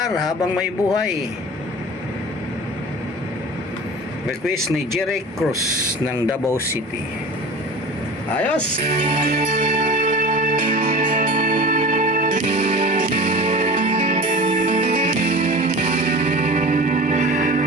habang may buhay. Request ni Jeric Cruz ng Davao City. Ayos!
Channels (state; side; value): normal; both; correlation 0.36